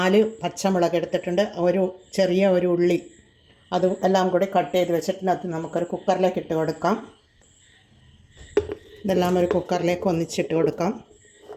പച്ചമുളക് എടുത്തിട്ടുണ്ട്. ചെറിയ ഒരു ഉള്ളി അതും എല്ലാം കൂടി കട്ട് ചെയ്ത് വെച്ചിട്ടുണ്ട്. അത് നമുക്കൊരു കുക്കറിലേക്ക് ഇട്ട് കൊടുക്കാം. ഇതെല്ലാം ഒരു കുക്കറിലേക്ക് ഒന്നിച്ചിട്ട് കൊടുക്കാം.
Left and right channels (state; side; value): identical; both; correlation 1.00